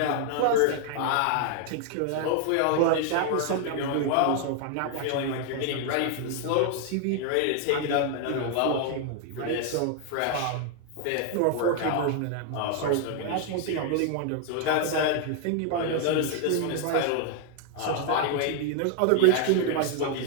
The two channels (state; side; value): different; both; correlation 0.00